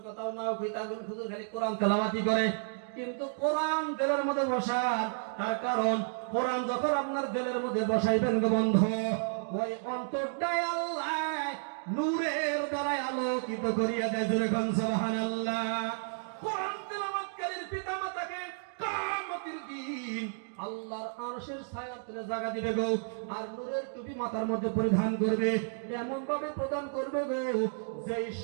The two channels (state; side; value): silent; left; digital silence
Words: কথাও নাও কই, তাহলে হুজুর খালি কোরআন তেলাওয়াতি করে। কিন্তু কোরআন দিলের মধ্যে বসান, তার কারণ কোরআন যখন আপনার দিলের মধ্যে বসাইবেন গো বন্ধু, ওই অন্তরটাই আল্লাহ নূরের দ্বারা আলোকিত করিয়া দেয়। জোরে কোন সুবহানাল্লাহ। কোরআন তেলাওয়াতকারীর পিতামাতাকে কিয়ামতের দিন আল্লাহর আরশের ছায়ার তলে জায়গা দিবে গো, আর নূরের টুপি মাথার মধ্যে পরিধান করবে, এমন ভাবে প্রদান করবে গো যেই